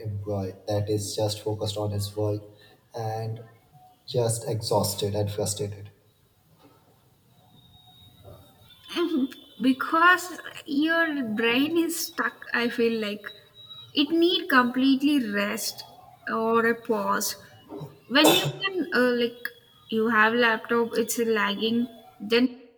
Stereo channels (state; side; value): identical; both; correlation 1.00